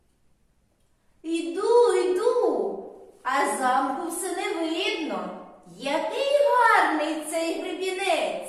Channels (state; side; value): identical; both; correlation 1.00